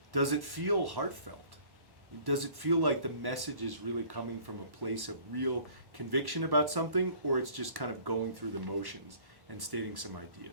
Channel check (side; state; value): left; late; 1.1 ms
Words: Does it feel heartfelt? Does it feel like the message is really coming from a place of real conviction about something, or it's just kind of going through the motions and stating some